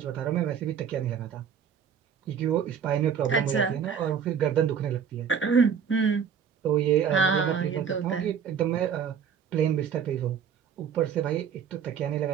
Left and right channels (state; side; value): quieter; left; 7.4 dB